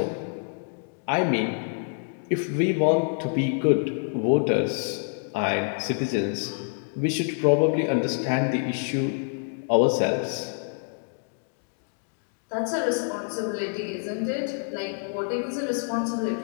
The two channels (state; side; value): silent; right; 58 dB below the other